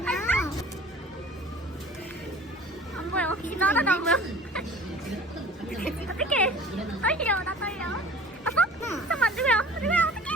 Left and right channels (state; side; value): normal; both; correlation 0.44